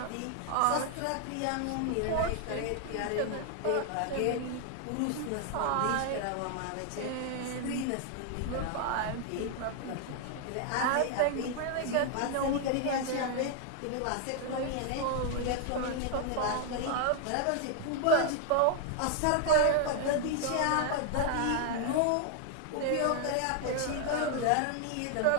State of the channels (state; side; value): different; both; correlation 0.00